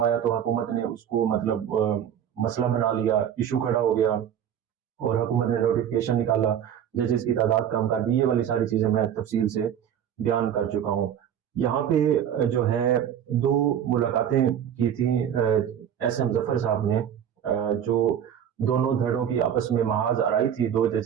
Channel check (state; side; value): quieter; left; 9.3 dB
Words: आया तो हुकूमत ने उसको मतलब मसला बना लिया, इशू खड़ा हो गया और हुकूमत ने नोटिफिकेशन निकाला, जजेस की तादाद कम कर दी। ये वाली सारी चीजें मैं तफसील से बयान कर चुका हूँ। यहाँ पे जो है 2 मुलाकातें की थी एस.एम. जफर साहब ने, जो दोनों धड़ों की आपस में महाज आराई थी, 2